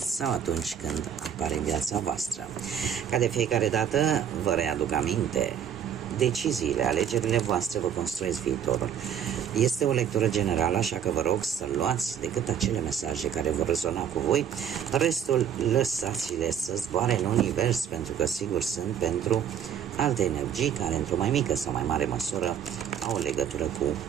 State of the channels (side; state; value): left; quieter; 8.7 dB